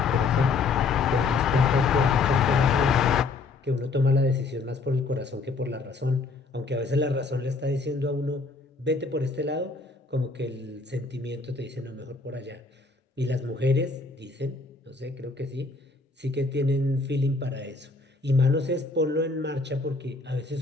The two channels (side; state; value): right; quieter; 3.9 dB